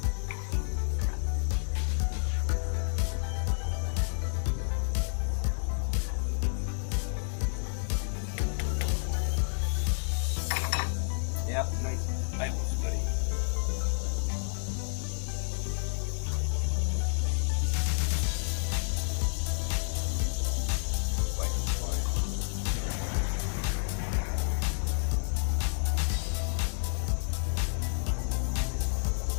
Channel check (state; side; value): silent; right; digital silence